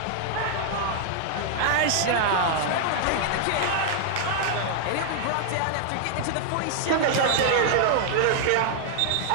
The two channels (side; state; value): both; different; correlation -0.01